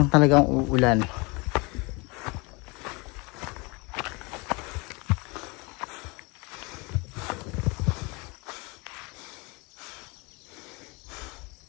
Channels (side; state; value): right; quieter; 27.6 dB